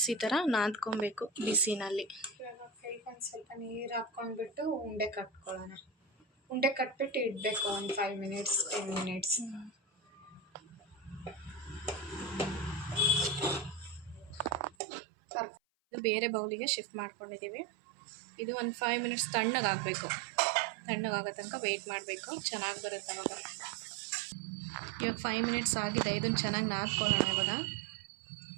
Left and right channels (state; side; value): drops out; left; at 14.8 s